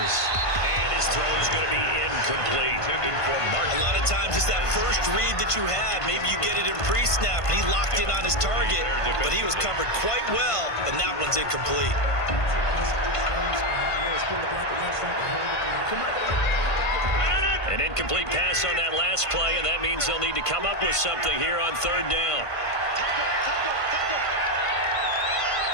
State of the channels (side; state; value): right; late; 1.5 ms